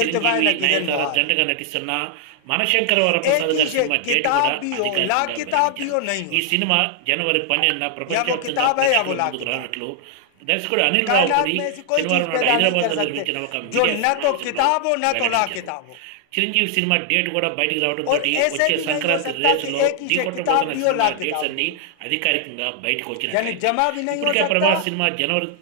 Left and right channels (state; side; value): different; both; correlation 0.00